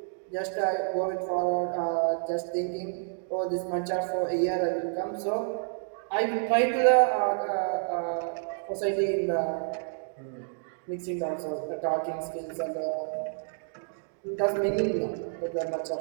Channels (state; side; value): silent; left; digital silence